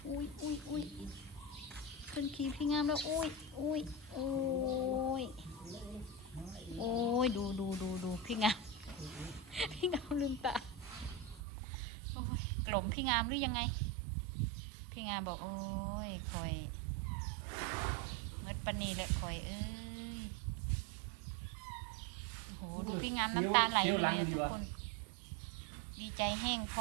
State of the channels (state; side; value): drops out; left; at 11.4 s